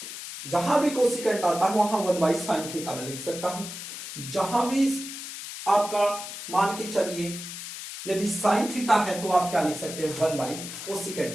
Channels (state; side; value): noise; left; hiss, 9 dB below the sound